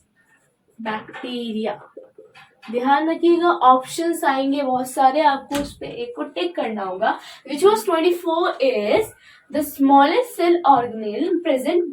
बैक्टीरिया। ध्यान रखिएगा, ऑप्शंस आएंगे बहुत सारे, आपको उस पे एक को टिक करना होगा। Which was 24 is the smallest cell organelle present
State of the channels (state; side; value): identical; both; correlation 1.00